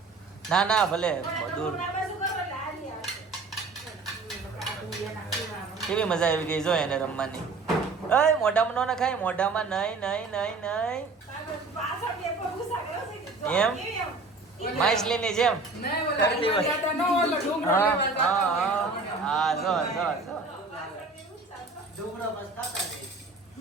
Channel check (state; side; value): quieter; left; 3.7 dB